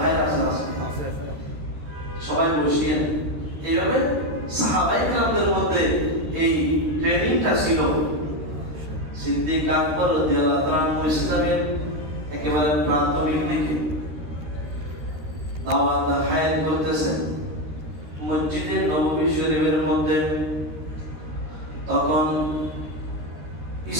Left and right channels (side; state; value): left; late; 13 ms